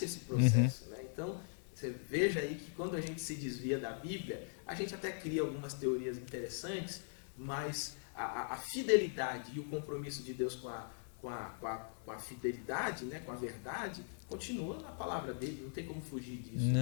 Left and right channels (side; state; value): right; silent; digital silence